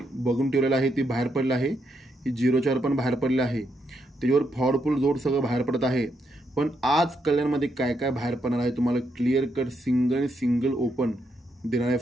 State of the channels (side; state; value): both; normal; correlation 0.79